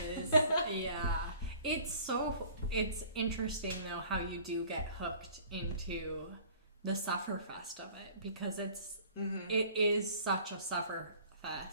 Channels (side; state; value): both; inverted; correlation -0.50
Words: Yeah. It's interesting, though, how you do get hooked into the Sufferfest of it, because it is such a